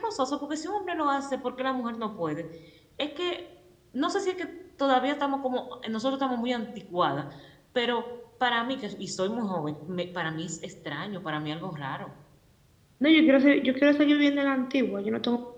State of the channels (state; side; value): identical; both; correlation 1.00